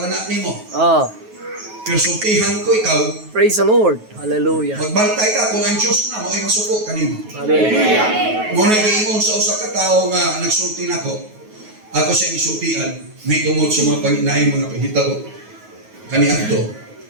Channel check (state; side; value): late; left; 9.3 ms